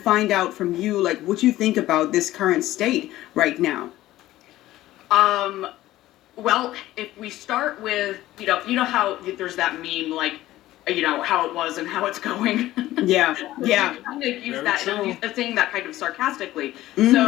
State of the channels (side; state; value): right; quieter; 15.4 dB